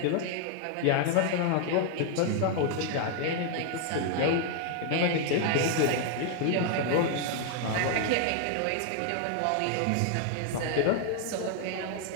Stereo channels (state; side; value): different; both; correlation 0.00